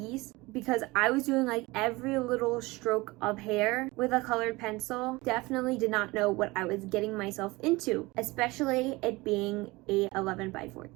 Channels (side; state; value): left; quieter; 22.2 dB